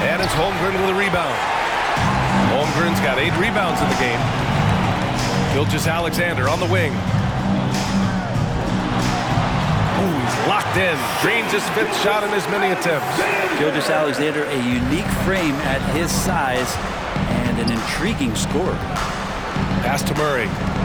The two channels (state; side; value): identical; both; correlation 1.00